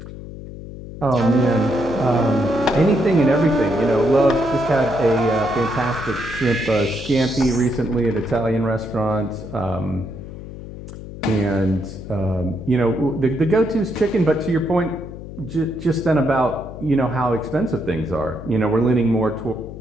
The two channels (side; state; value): left; noise; hum, 12 dB below the sound